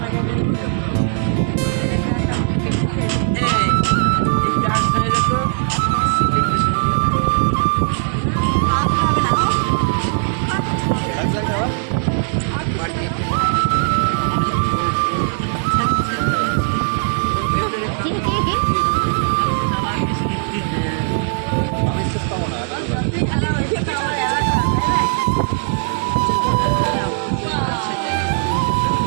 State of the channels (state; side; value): silent; left; digital silence